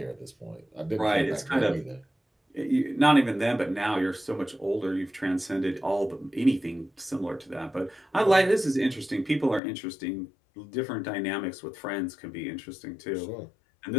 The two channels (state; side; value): drops out; right; at 9.6 s